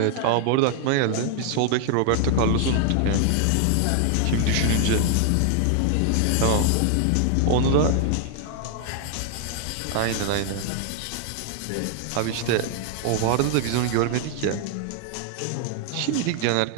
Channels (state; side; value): different; both; correlation 0.00